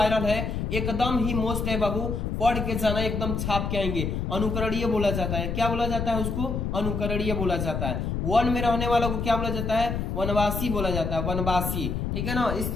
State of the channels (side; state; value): left; noise; rumble, 2 dB below the sound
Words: है, एकदम ही मोस्ट है बाबू, पढ़ के जाना, एकदम छाप के आएंगे। अनुकरणीय बोला जाता है, क्या बोला जाता है उसको, अनुकरणीय बोला जाता है। वन में रहने वालों को क्या बोला जाता है, वनवासी बोला जाता है, वनवासी, ठीक है ना। इस